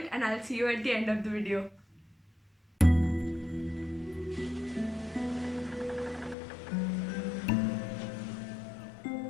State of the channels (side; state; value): right; drops out; at 6.4 s